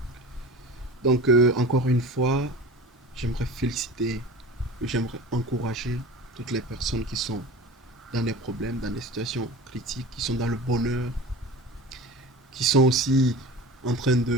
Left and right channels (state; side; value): normal; both; correlation 0.35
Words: Donc, encore une fois, j'aimerais féliciter, j'aimerais encourager toutes les personnes qui sont dans des problèmes, dans des situations critiques, qui sont dans le bonheur, qui sont aussi en train